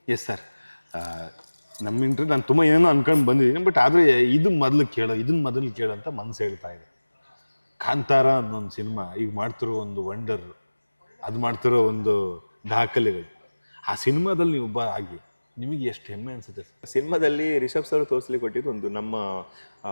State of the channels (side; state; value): both; inverted; correlation -1.00